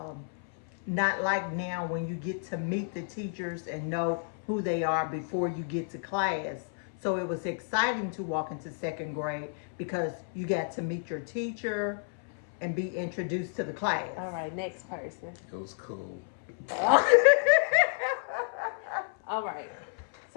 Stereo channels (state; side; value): silent; right; 57 dB below the other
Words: not like now when you get to meet the teachers and know who they are before you get to class. So it was exciting to walk into second grade because you got to meet your teacher and be introduced to the class. All right, next person. It was cool. All right.